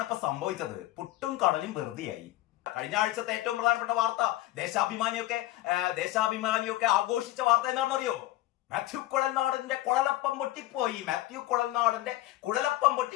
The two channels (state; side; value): quieter; right; 16.5 dB